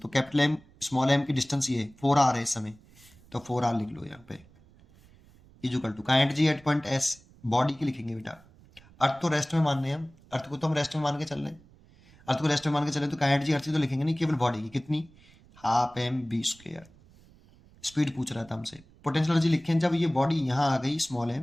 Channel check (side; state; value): right; noise; rumble, 26 dB below the sound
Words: कैपिटल एम स्मॉल एम की डिस्टेंस ये 4r है इस समय, तो 4r लिख लो यहाँ पे, equal to kinetic energy at point S, body की लिखेंगे बेटा। अर्थ तो रेस्ट में मान रहे हैं हम, अर्थ को तो हम रेस्ट में मान के चल रहे हैं, अर्थ को रेस्ट में मान के चले तो काइनेटिक एनर्जी अर्थ तो लिखेंगे नहीं, केवल बॉडी की कितनी, half m v square. Speed पूछ रहा था हमसे, पोटेंशियल एनर्जी लिखें जब ये बॉडी यहाँ आ गई स्मॉल एम,